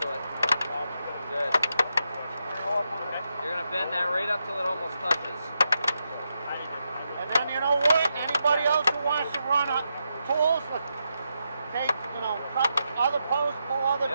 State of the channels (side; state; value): both; inverted; correlation -0.85